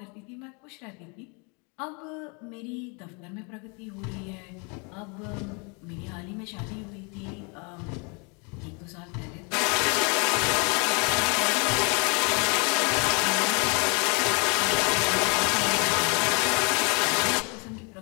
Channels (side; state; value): right; quieter; 33.3 dB